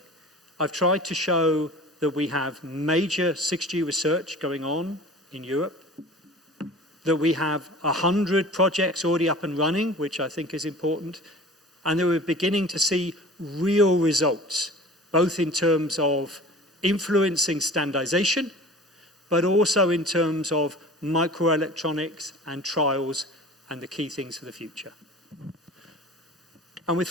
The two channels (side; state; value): both; normal; correlation 0.41